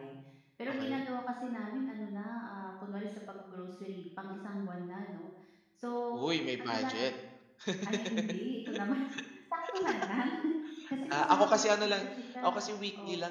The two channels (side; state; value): both; identical; correlation 1.00